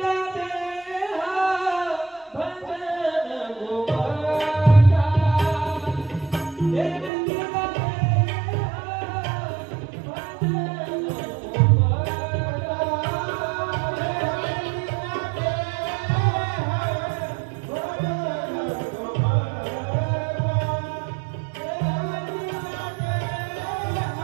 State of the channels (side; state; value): left; drops out; at 7.1 s